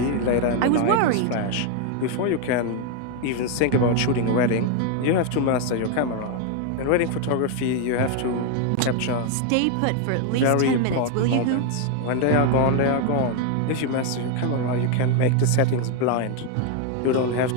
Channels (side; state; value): both; different; correlation 0.01